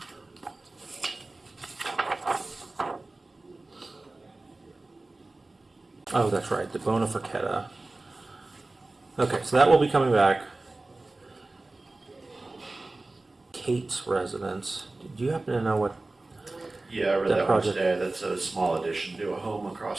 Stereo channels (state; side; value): quieter; left; 3.1 dB